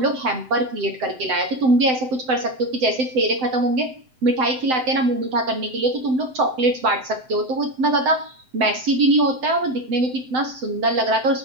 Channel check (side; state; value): left; late; 7.8 ms